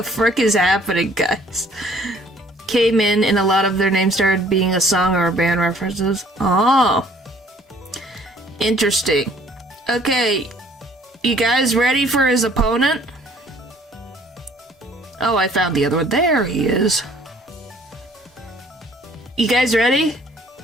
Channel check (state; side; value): normal; both; correlation 0.58